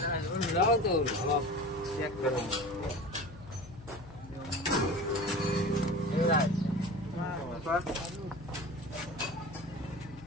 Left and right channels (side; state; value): left; noise; hum, 17 dB below the sound